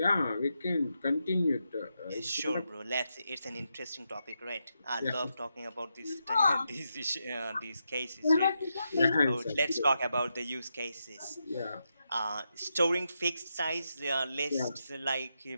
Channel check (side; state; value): both; inverted; correlation -0.85